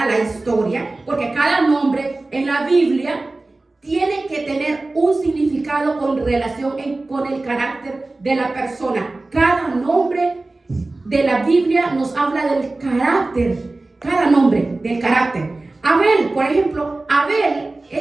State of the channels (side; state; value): left; quieter; 3.1 dB